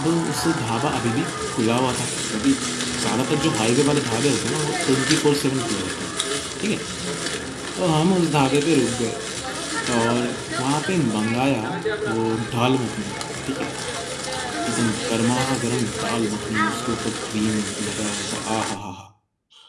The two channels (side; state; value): both; identical; correlation 1.00